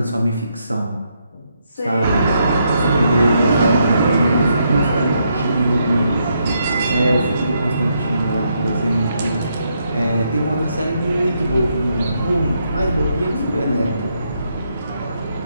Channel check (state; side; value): inverted; both; correlation -0.78